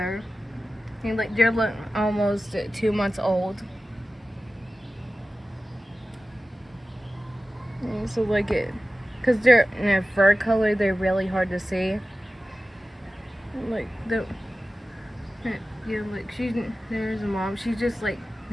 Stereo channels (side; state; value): both; normal; correlation 0.95